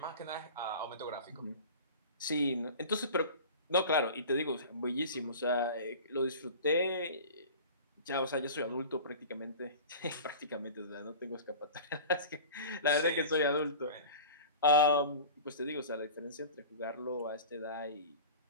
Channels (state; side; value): inverted; both; correlation -0.37